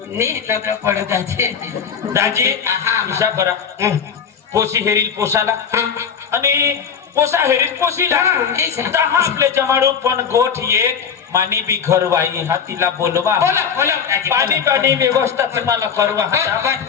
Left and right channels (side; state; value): right; quieter; 7.0 dB